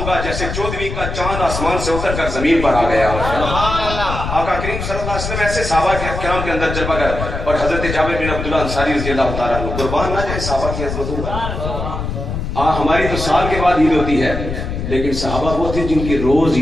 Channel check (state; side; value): noise; left; rumble, 5 dB below the sound